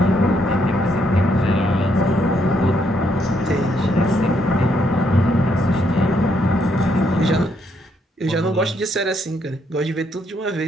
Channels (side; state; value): both; normal; correlation 0.74